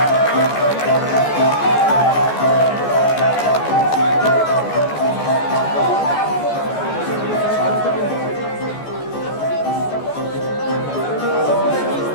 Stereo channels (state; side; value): late; right; 14 ms